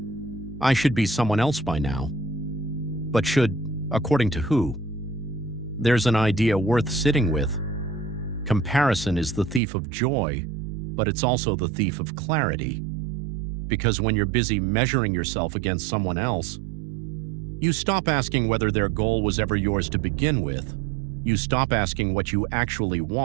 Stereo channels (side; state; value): left; drops out; at 9.6 s